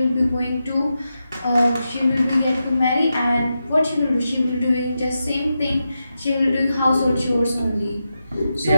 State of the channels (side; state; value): both; inverted; correlation -0.88